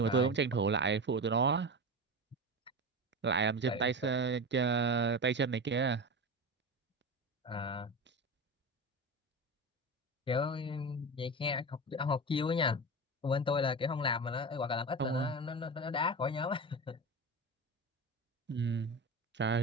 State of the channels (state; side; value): normal; both; correlation 0.24